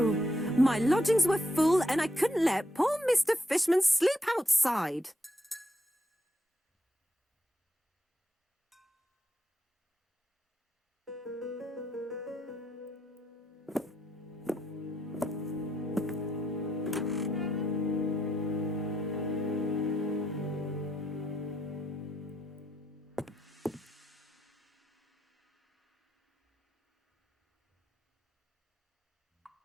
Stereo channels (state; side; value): normal; both; correlation 0.78